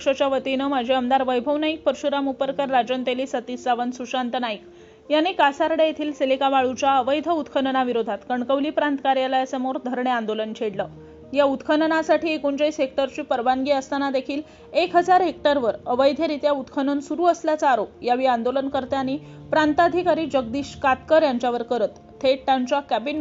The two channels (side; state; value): both; identical; correlation 1.00